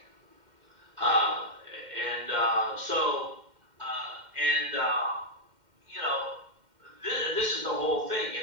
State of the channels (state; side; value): late; left; 2.1 ms